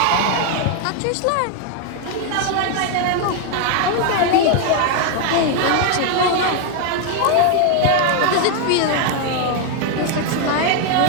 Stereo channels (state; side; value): different; both; correlation 0.01